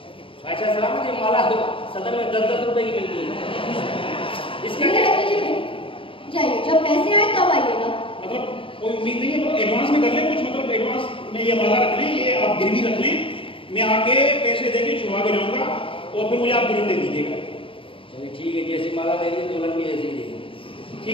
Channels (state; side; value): late; right; 0.26 ms